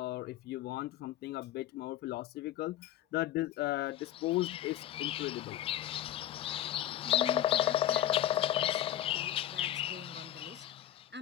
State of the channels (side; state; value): right; quieter; 12.4 dB